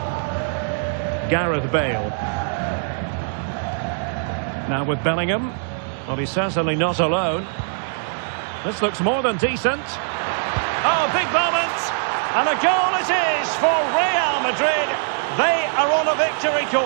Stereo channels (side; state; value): left; silent; digital silence